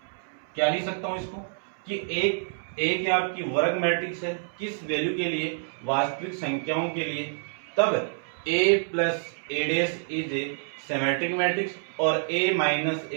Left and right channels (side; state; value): left; silent; 60 dB below the other